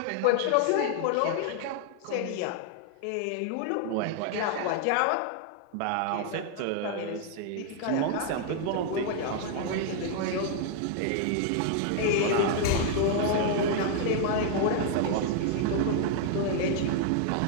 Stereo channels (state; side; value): different; both; correlation 0.00